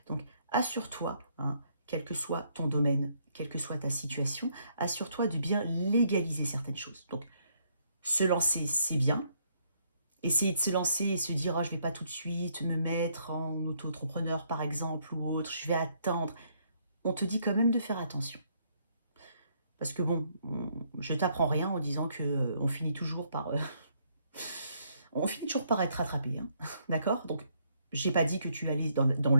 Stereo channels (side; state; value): both; inverted; correlation -0.70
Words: Donc assure-toi, hein, quel que soit ton domaine, quelle que soit ta situation, assure-toi de bien légaliser certaines choses. Donc se lancer, c'est bien. Essayer de se lancer et se dire, oh, je ne vais pas tout de suite me mettre en auto-entrepreneur par exemple ou autre, je vais attendre. On te dit quand même de faire attention. Parce que bon, je t'apprends rien en disant que on finit toujours par on finit toujours par être rattrapé, hein. D'accord? Donc, j'ai pas dit que tu allais dans